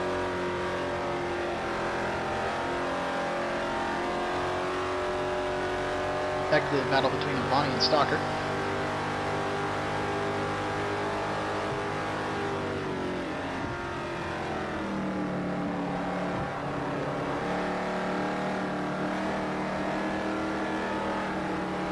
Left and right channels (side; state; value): both; identical; correlation 1.00